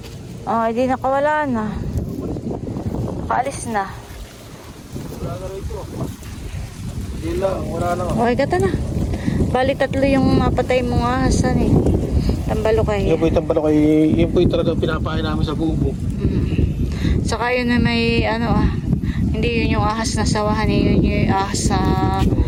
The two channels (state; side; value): identical; both; correlation 1.00